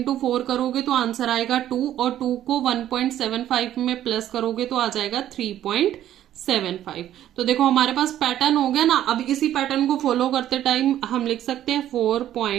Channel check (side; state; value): left; quieter; 11.9 dB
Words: 4 करोगे तो आंसर आएगा 2, और 2 को 1.75 में प्लस करोगे तो आ जाएगा 3.75। तो देखो हमारे पास पैटर्न हो गया ना। अब इसी पैटर्न को फॉलो करते टाइम हम लिख सकते हैं